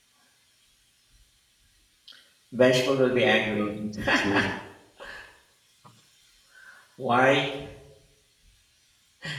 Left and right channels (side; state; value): both; identical; correlation 1.00